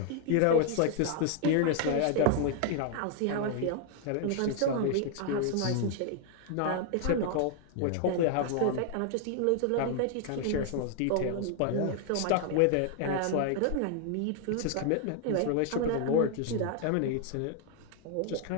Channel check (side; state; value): both; different; correlation 0.00